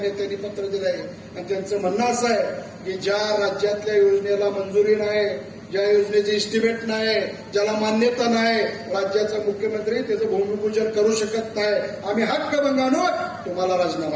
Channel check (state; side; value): identical; both; correlation 1.00